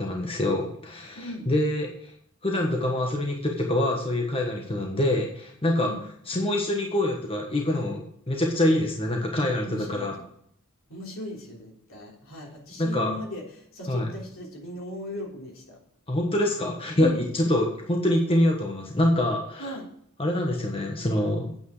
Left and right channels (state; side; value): normal; both; correlation 0.64